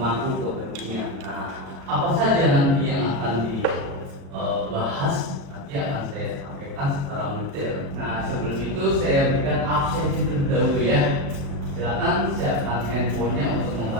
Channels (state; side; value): late; left; 36 ms